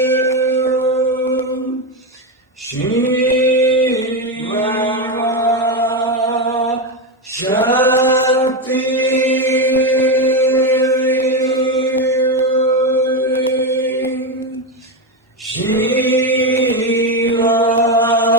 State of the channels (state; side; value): normal; both; correlation 0.11